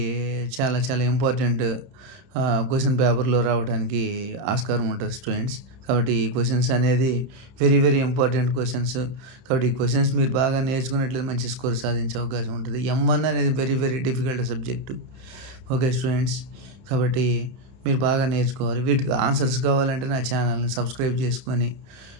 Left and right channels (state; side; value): late; left; 31 ms